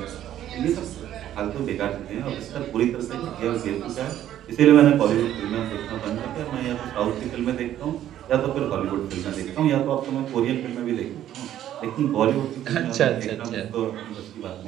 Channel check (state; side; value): quieter; left; 11.8 dB